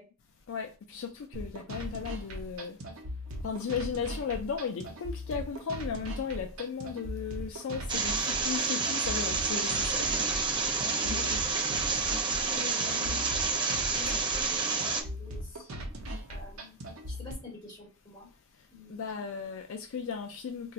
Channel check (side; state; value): both; normal; correlation -0.03